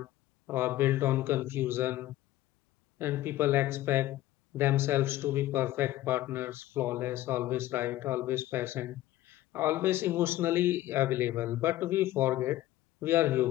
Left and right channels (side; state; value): right; quieter; 15.2 dB